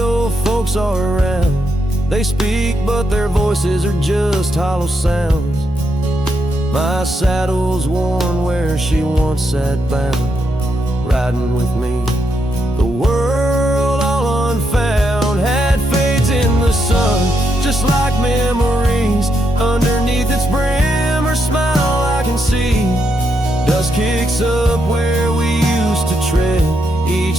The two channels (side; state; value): both; normal; correlation 0.80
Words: folks are around. They speak but their voices are just hollow sounds. My saddle's worn where she once sat bound, riding with me, the world all unfound. Had fades in the sun, just like memories. Underneath its brim, her smile I can see. Dust kicks up where we used to tread, each